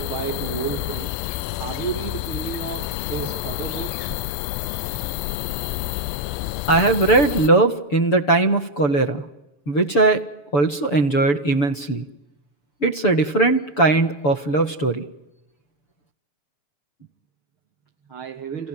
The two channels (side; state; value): right; late; 6.9 ms